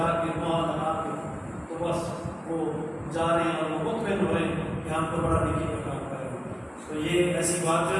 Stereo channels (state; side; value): identical; both; correlation 1.00